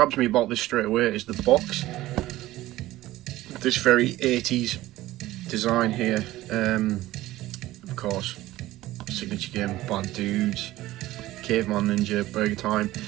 me about this straight away is the box. This very 80s design here. Of course, signature game, Bad Dudes, Caveman Ninja, Burger Time.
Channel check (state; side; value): quieter; left; 16.3 dB